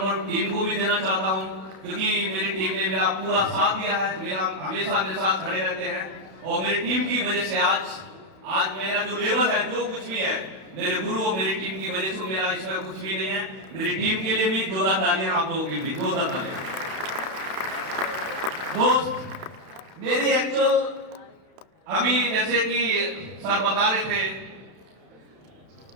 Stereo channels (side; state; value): left; late; 31 ms